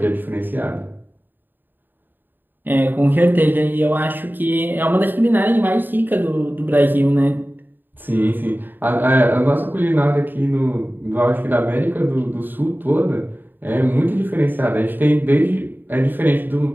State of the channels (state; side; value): late; left; 0.092 ms